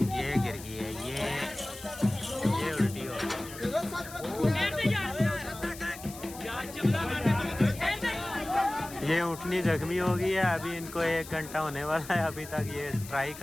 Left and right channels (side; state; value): left; noise; hiss, 15 dB below the sound